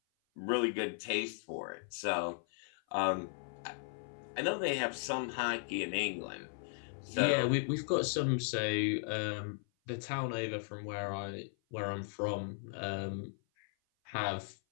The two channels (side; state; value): right; silent; 53 dB below the other